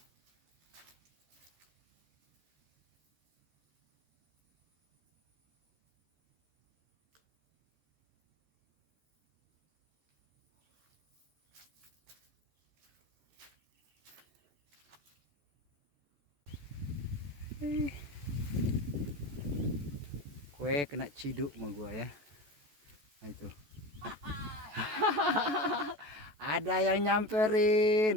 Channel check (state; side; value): late; left; 14 ms